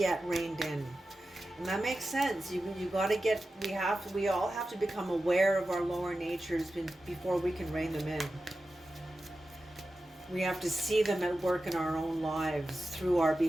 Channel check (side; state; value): both; normal; correlation 0.93